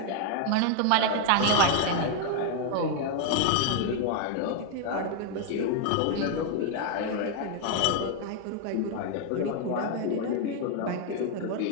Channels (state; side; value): different; both; correlation 0.00